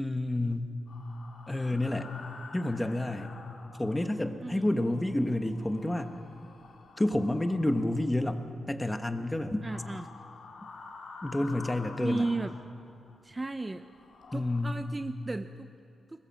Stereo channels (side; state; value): both; normal; correlation 0.96